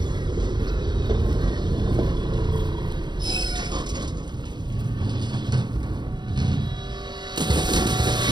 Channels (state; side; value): late; left; 0.21 ms